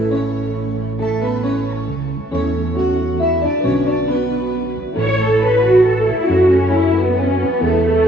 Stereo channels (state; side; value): normal; both; correlation 0.65